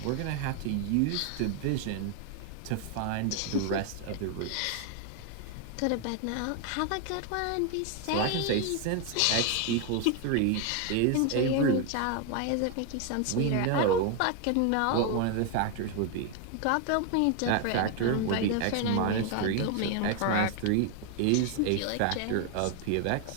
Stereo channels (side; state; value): both; different; correlation 0.01